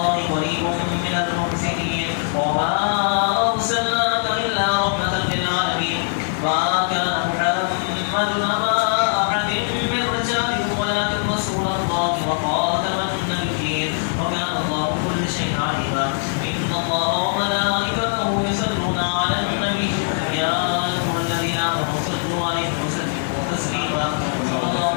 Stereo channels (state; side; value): silent; right; digital silence